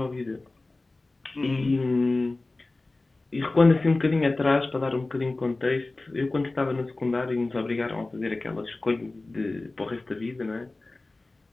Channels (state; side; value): quieter; right; 3.1 dB